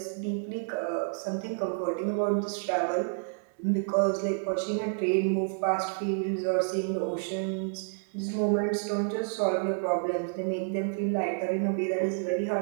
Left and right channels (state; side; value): silent; left; digital silence